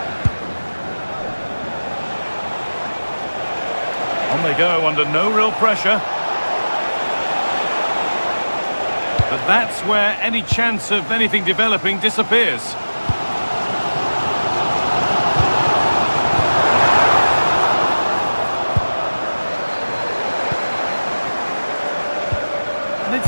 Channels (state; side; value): inverted; both; correlation -1.00